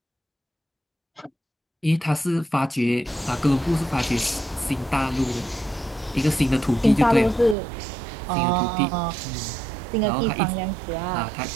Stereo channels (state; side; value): drops out; left; at 7.6 s